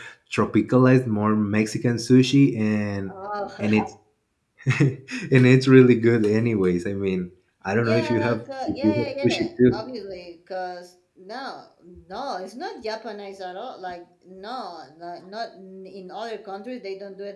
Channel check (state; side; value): identical; both; correlation 1.00